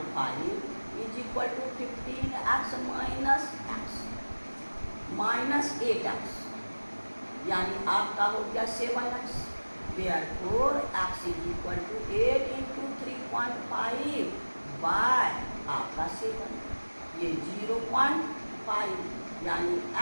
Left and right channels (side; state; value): both; inverted; correlation -1.00